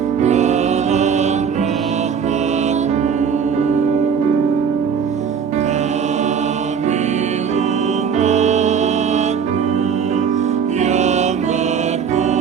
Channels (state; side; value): quieter; left; 6.9 dB